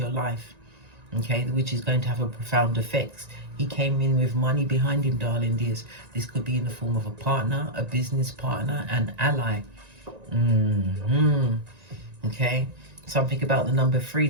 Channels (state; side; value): late; left; 1.9 ms